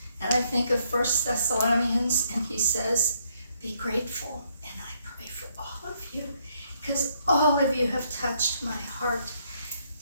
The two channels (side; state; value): both; inverted; correlation -0.71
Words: and I think of 1 Thessalonians, and he says, be grateful. And I pray for all of you, because all of you have touched my heart.